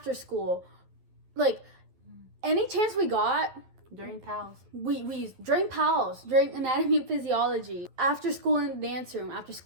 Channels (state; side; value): late; left; 11 ms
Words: school. Like, any chance we got. During PALS. We used during PALS, during anatomy and physiology, after school in the dance room, after